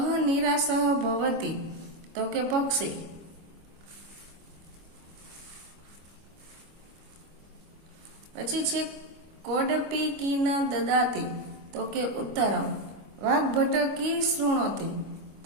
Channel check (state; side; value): late; left; 25 ms